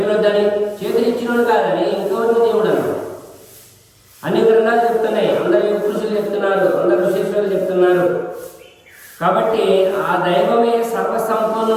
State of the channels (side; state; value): both; identical; correlation 1.00